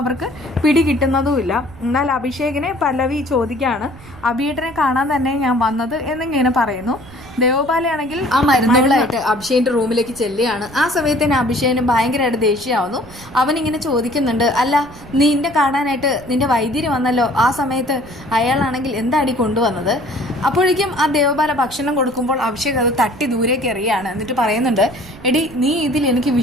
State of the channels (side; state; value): right; noise; rumble, 20 dB below the sound